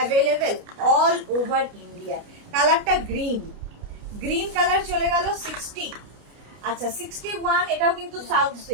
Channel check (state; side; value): late; left; 29 ms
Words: all over India. কালারটা গ্রিন কালার চলে গেল 60। আচ্ছা, 61, এটাও কিন্তু সাউথ